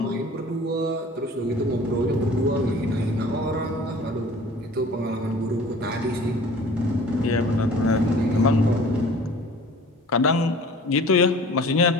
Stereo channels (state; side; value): normal; both; correlation 0.46